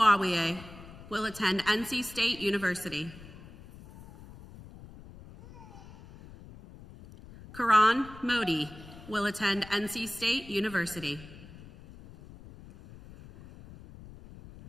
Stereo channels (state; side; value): noise; left; rumble, 18 dB below the sound